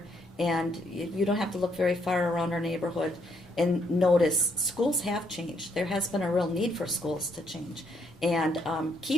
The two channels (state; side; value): normal; both; correlation 0.72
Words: And you don't have to look very far around our neighborhood and notice schools have changed. There has been a real need for schools to change and